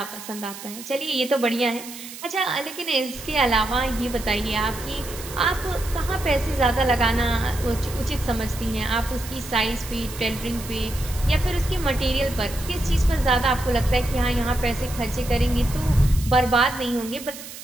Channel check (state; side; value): noise; right; hiss, 13 dB below the sound